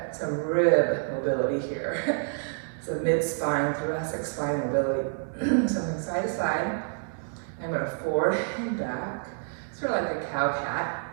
some rib mobility here. So mid-spine, thoracic spine mobility. Something side to side. I'm going to forward and back, sort of like a cow cat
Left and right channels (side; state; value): left; silent; 59 dB below the other